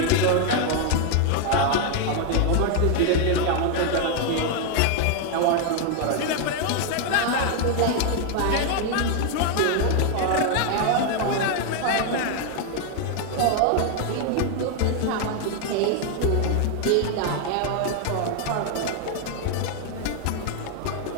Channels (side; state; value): both; different; correlation 0.01